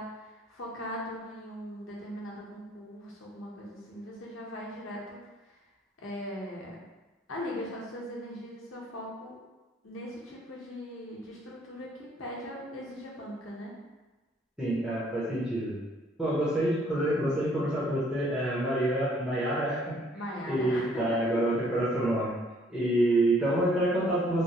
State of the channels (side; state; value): both; normal; correlation 0.63